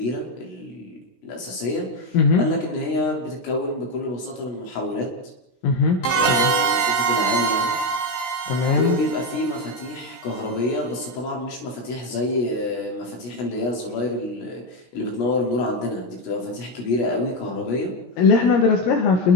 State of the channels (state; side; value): late; right; 16 ms